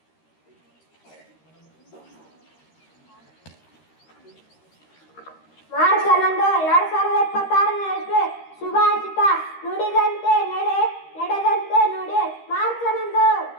March 11, 2026 ಶುಭಾಷಿತ ನುಡಿದಂತೆ ನಡೆ ನಡೆದಂತೆ ನುಡಿ. March 11,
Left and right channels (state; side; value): late; right; 13 ms